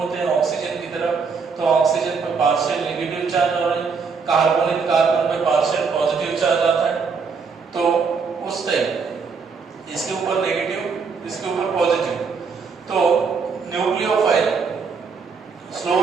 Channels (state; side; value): quieter; left; 5.3 dB